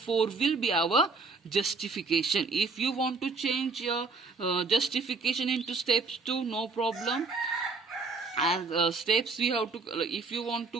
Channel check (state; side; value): quieter; left; 4.2 dB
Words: will be our justification. If you want to change your justification into steps 2, no problem. And steps we have to, if you want